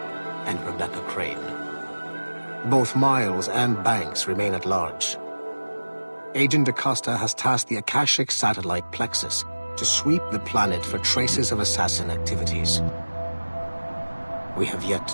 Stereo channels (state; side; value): inverted; both; correlation -1.00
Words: and Rebecca Crane. Both Miles and Banks remain at large. Agent Acosta has tasked the Akashic satellite Plexus to sweep the planet for traces of assassin activities. We have yet